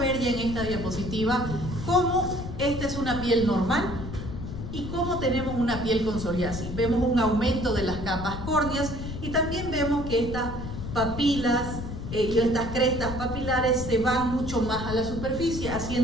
ya en esta diapositiva cómo esta es una piel normal y cómo tenemos una piel con psoriasis. Vemos un aumento de las capas córneas y también vemos que estas papilas y estas crestas papilares se van mucho más a la superficie,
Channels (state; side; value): noise; left; rumble, 7 dB below the sound